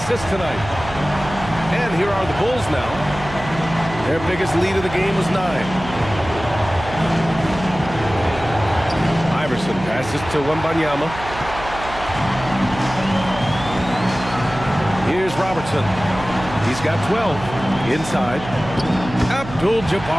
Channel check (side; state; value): right; noise; hum, 12 dB below the sound